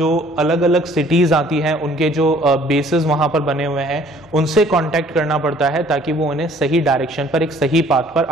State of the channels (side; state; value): both; normal; correlation 0.56